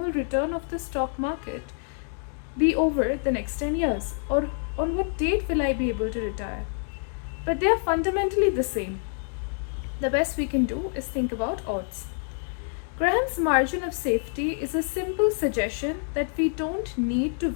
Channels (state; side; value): silent; right; 59 dB below the other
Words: return of the stock market be over the next 10 years? Or on what date will I be able to retire? But they are fundamentally the same. The best we can do is think about odds. Graham's margin of safety is a simple suggestion that we don't need to